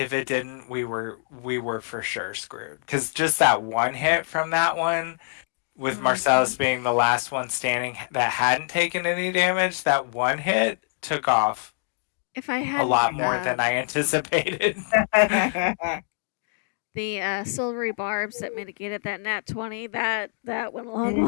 it didn't, we were for sure screwed. Because just that one hit from that one with Marcellus being the last one standing that hadn't taken any damage, that one hit took off If I had a lot more than I anticipated. The silvery barbs that mitigated that nat 20, that went a long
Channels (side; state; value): right; silent; digital silence